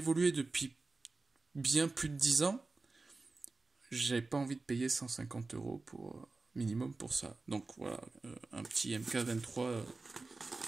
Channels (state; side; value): quieter; left; 3.6 dB